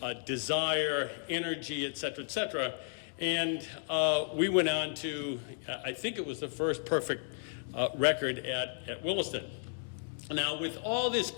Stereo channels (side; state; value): right; silent; digital silence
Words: desire, energy, et cetera, and we went on to, I think it was the first perfect record at Williston. Now, with all this